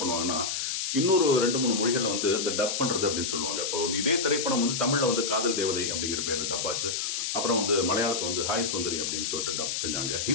பண்ணுவாங்கன்னா, இன்னொரு 2-3 மொழிகள் இந்த டப் பண்றது அப்படின்னு சொல்லுவாங்க. இப்போ இதே திரைப்படம் தமிழ்ல காதல் தேவதை அப்படிங்கிற பேர்ல டப் ஆச்சு. அப்புறம் மலையாளத்தை ஹாய் சுந்தரி அப்படின்னு சொல்லிட்டு டப் செஞ்சாங்க.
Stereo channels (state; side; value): noise; left; hiss, 1 dB below the sound